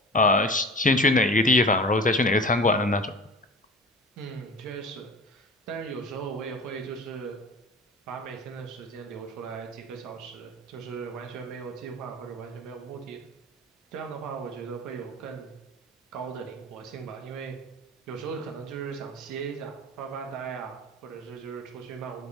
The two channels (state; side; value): normal; both; correlation 0.36